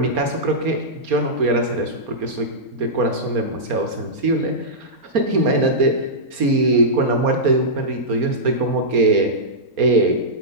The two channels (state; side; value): late; left; 4.3 ms